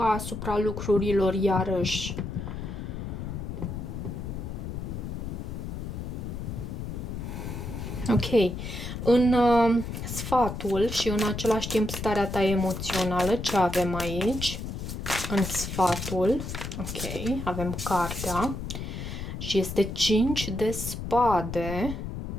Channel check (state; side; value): noise; left; rumble, 6 dB below the sound